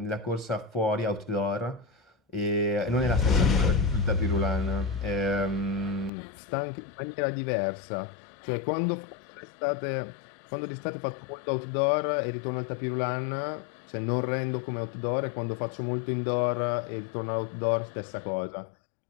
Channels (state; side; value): drops out; right; at 6.1 s